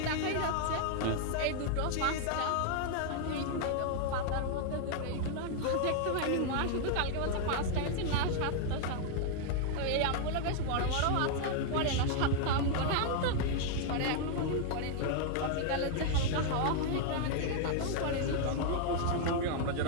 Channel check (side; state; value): both; different; correlation 0.00